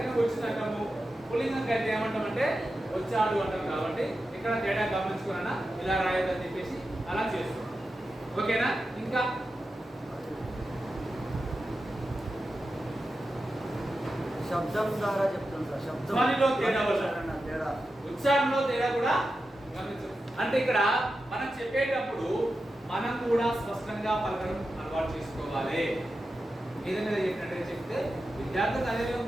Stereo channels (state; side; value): normal; both; correlation 0.91